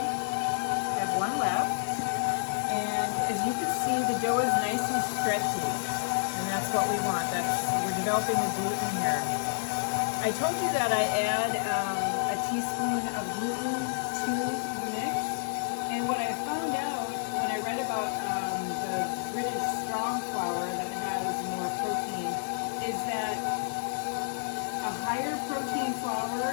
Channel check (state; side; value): silent; right; digital silence